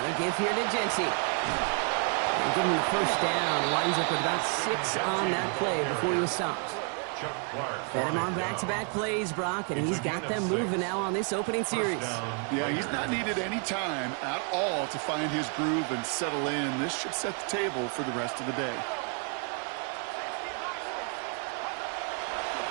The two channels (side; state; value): left; quieter; 39.3 dB